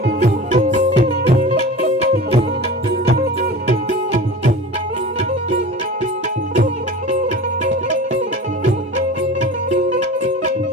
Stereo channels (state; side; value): normal; both; correlation 0.36